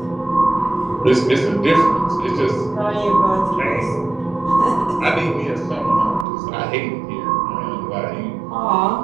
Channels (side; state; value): left; drops out; at 6.2 s